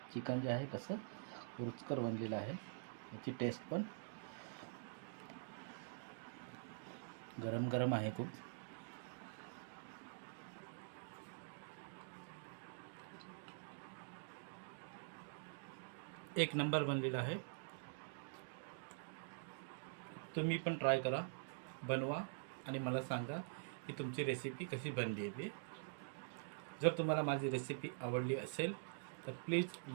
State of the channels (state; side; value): silent; left; digital silence